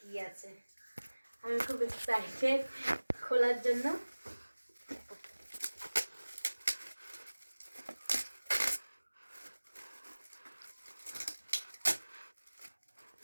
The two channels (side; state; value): both; inverted; correlation -1.00